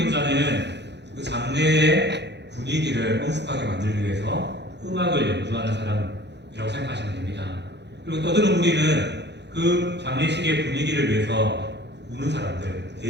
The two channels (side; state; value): left; late; 0.50 ms